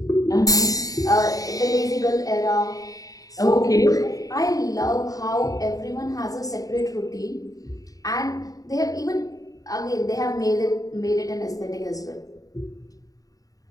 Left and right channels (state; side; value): late; right; 0.17 ms